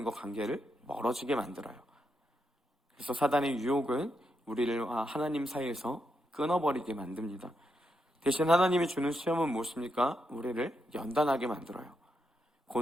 관계를 멀어지게 만들어요. 그래서 사단의 유혹은 우리를 하나님 사이에서 끊어버리게 만듭니다. 대신 하나님이 주는 시험은 무엇입니까? 우리를 연단하게 만들어요.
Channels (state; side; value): normal; both; correlation 0.83